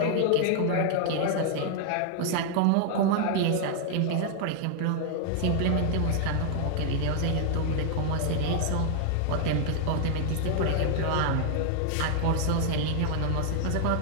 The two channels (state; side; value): different; both; correlation 0.00